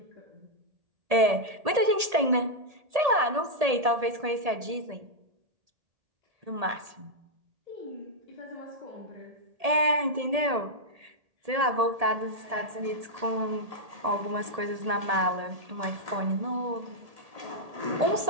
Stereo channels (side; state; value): left; late; 1.8 ms